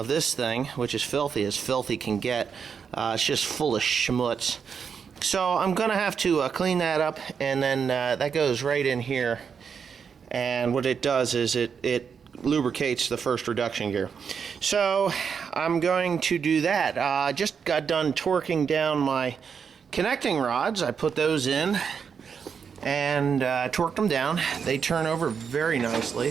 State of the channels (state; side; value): quieter; left; 6.6 dB